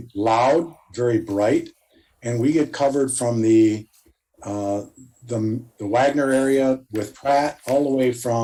loud, very bright. And we get covered from the Wagner area with Pratt all the way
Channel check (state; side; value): identical; both; correlation 1.00